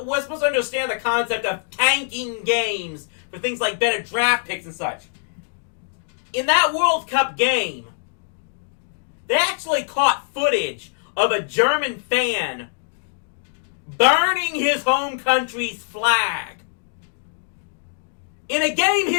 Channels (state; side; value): silent; right; digital silence